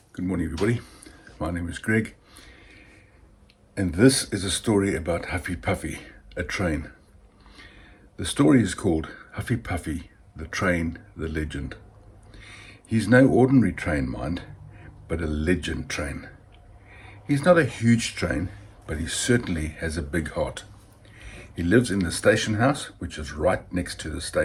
Good morning, everybody. My name is Greg, and this is a story about Huffy Puffy, a train. The story is called Huffy Puffy, the Train, the Legend. He's no ordinary train, mind, but a legend train. He's not a huge train, but he certainly has a big heart. He lives in the station house, which is right next to the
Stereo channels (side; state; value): both; identical; correlation 1.00